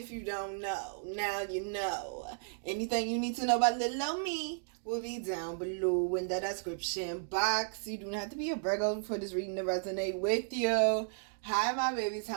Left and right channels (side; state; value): left; silent; digital silence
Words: you don't know, now you know. Anything you need to know about little old me will be down below in the description box. You do not have to be a Virgo for this reading to resonate with you. Hi my babies,